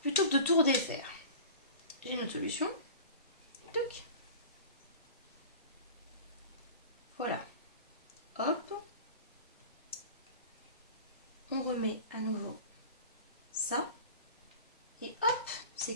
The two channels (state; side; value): inverted; both; correlation -0.37